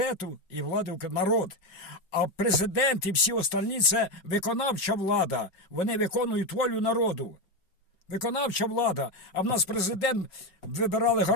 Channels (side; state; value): right; late; 5.3 ms